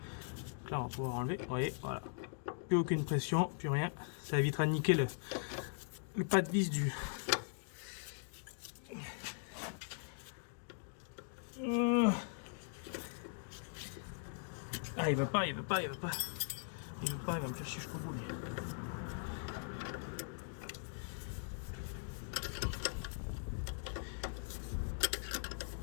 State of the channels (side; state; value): right; silent; digital silence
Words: Donc là, on va pouvoir enlever. Vous voyez, voilà. Plus aucune pression, plus rien. Ça évitera de niquer le pas de vis du. Ah, il veut pas. Il va me faire chier jusqu'au bout.